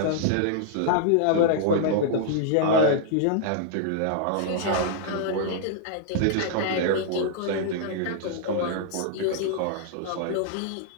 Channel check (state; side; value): different; both; correlation -0.01